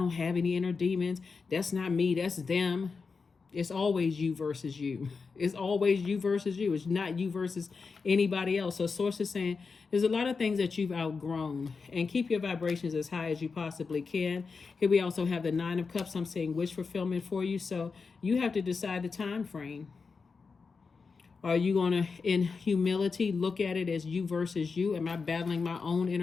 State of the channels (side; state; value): right; quieter; 4.9 dB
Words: have any inner demons. That's not me. That's them. It's always you versus you. It's always you versus you. It's not you versus anybody else. So Source is saying there's a lot of things that you've outgrown, and keep your vibrations as high as you possibly can. Here we also have the 9 of Cups. I'm saying wish fulfillment for you. So you have to decide the time frame. Are you going to, in humility, look at it as you versus you? Am I battling my own